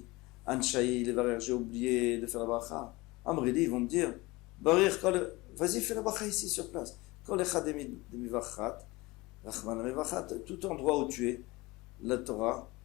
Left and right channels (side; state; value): right; quieter; 22.1 dB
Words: Anshaï, les Varer, j'ai oublié de faire la bracha. Amrili, ils vont me dire, Barir, vas-y, fais la bracha ici, sur place. Kol echad demivachat, Rachmana mevachat, tout endroit où tu es, la Torah,